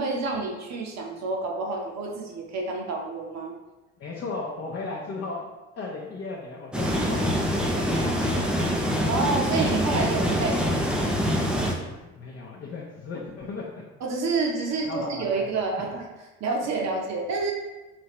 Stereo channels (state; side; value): normal; both; correlation 0.39